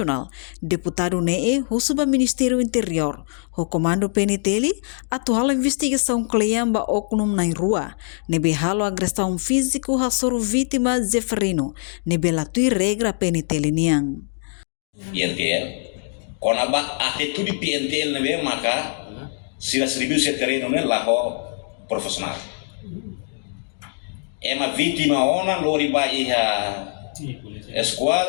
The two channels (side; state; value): right; silent; digital silence